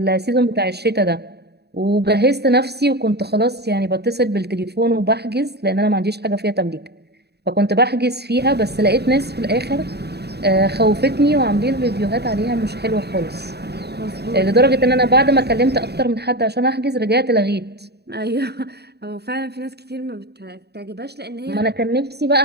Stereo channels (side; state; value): left; late; 0.48 ms